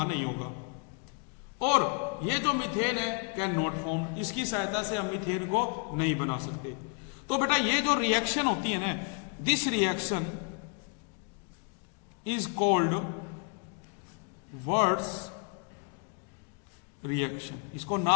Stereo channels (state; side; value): quieter; right; 36.4 dB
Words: नहीं होगा। और ये जो मीथेन है कैन नॉट फॉर्म, इसकी सहायता से हम मीथेन को नहीं बना सकते। तो बेटा ये जो रिएक्शन होती है ना, this reaction is called words reaction. इसको